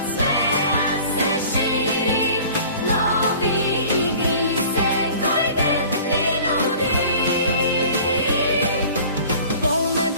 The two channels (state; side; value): inverted; both; correlation -0.46